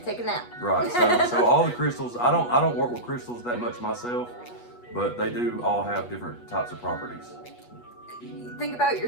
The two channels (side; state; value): right; late; 8.3 ms